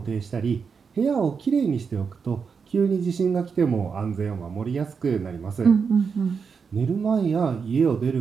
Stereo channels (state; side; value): quieter; left; 5.8 dB